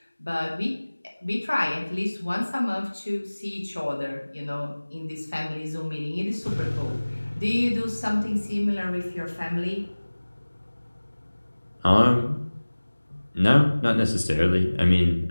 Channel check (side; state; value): both; inverted; correlation -1.00